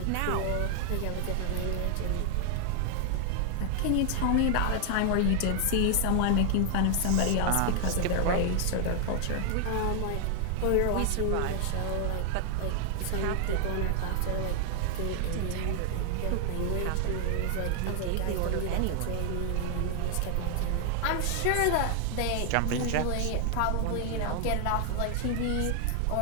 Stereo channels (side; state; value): both; different; correlation 0.00